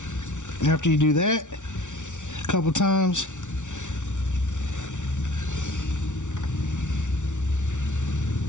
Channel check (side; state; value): right; late; 0.86 ms